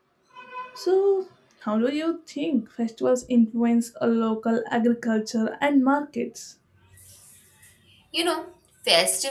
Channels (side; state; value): both; identical; correlation 1.00